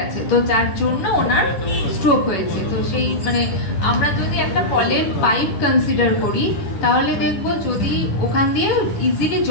তো যার জন্য ওনার স্ট্রোক হয়েছে। তো সেই মানে আমরা যদি একটা কলের পাইপ কনসিডার করি তাহলে দেখবো যদি ওখান দিয়ে ইজিলি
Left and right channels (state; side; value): late; right; 10 ms